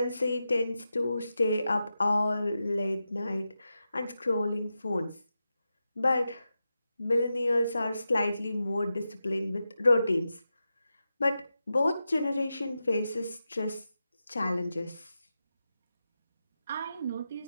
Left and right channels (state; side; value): inverted; both; correlation -0.90